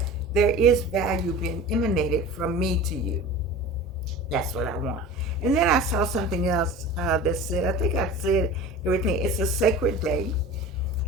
there is value being emanated from me to you. That's what I want. And then I saw something else that said, I think I said everything. It's a sacred day.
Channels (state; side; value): normal; both; correlation 0.36